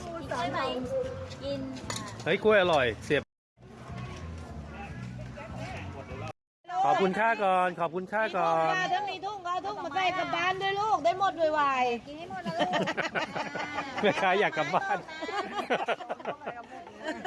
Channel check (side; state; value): both; identical; correlation 1.00